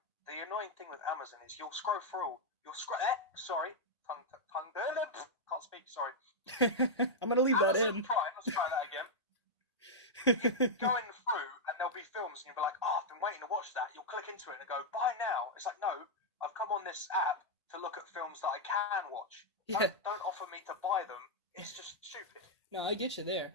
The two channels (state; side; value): normal; both; correlation -0.04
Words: the annoying thing with Amazon is you'll scroll through. Sorry, tongue. Can't speak. Sorry. I'm gonna leave that Amazon in. Prime. Let's try that again. Going through, and there'll be films, and you'll be like, "Oh, I've been waiting to watch that." You'll click into it and go, "Buy now." It's like, no, I've come on this app to look at films that I can watch. Yeah. Don't offer me to buy them. It's just stupid. No, I get you there.